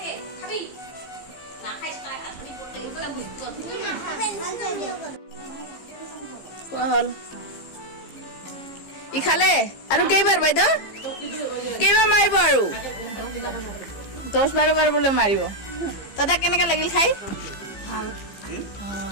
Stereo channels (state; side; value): late; right; 15 ms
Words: খোৱা হ'ল ই খালে আৰু কেইবাৰ বাইদেউ কেইবাৰ মাৰিব আৰু 10-12 বাৰ বোলে মাৰিব দাদা কেনেকা লাগিল খাই ভাল